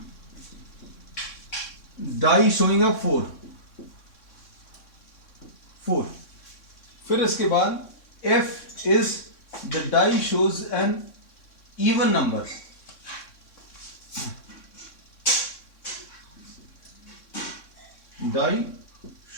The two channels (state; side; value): late; right; 3.6 ms